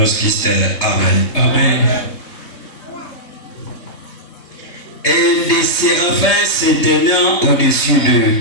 de Christ. Amen. Amen. Et des séraphins se tenant au-dessus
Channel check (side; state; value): right; late; 3.3 ms